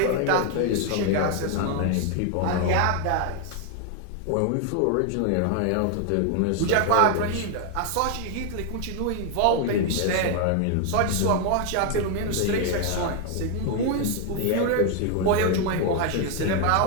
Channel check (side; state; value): both; different; correlation 0.00